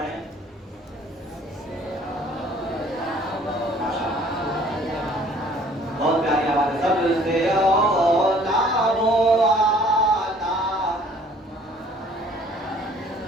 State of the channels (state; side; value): normal; both; correlation 0.56